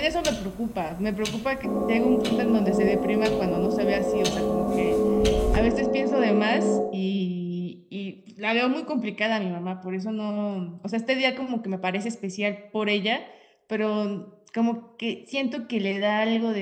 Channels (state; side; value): identical; both; correlation 1.00